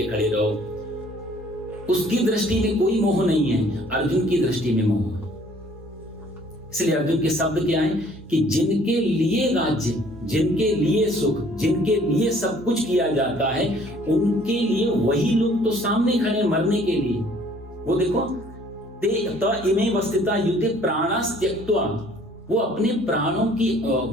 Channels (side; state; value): both; normal; correlation 0.57